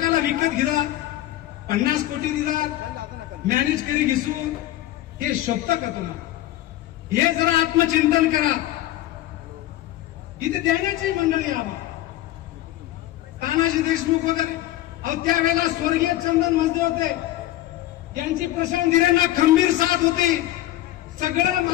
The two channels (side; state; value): right; quieter; 14.9 dB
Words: विकत घेता, 50 कोटी दिला मॅनेज करी घिसून, हे शोभतं का तुम्हाला? हे जरा आत्मचिंतन करा. इथे देण्याची मंडळी आवा, तानाजी देशमुख वगैरे, अहो त्यावेळेला स्वर्गीय चंदन मजदे होते, यांची प्रशांत हिरेंना खंबीर साथ होती. सगळं